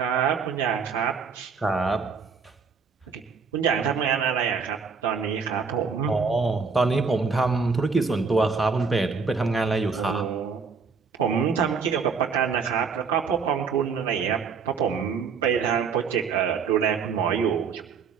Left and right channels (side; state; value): left; quieter; 5.4 dB